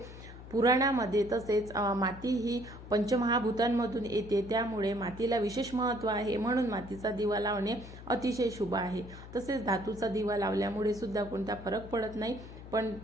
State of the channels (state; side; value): noise; left; hum, 15 dB below the sound